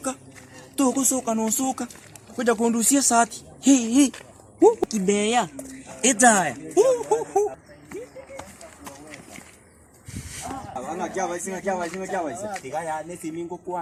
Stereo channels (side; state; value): both; identical; correlation 1.00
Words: Togo soka no soka. Kuja kundusia sati. Hii. Kibeya. Edaya. Ana kya vai singa. Tiga ya nesi mingo